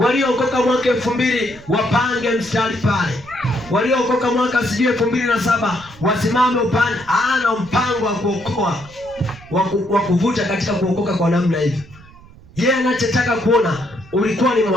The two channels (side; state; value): right; noise; rumble, 22 dB below the sound